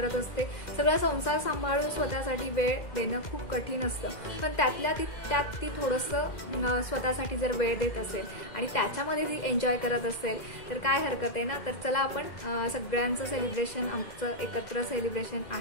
असते, सगळा संसार सांभाळून स्वतःसाठी वेळ देणं खूप कठीण असतं। पण त्यात ती थोडंसं स्वतःसाठी जर वेळ देत असेल आणि त्याच्यामध्ये ती एन्जॉय करत असेल तर काय हरकत आहे ना। तर चला आपण सगळ्यांचं सेलिब्रेशन, आमचं एकत्र सेलिब्रेशन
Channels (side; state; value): right; late; 2.1 ms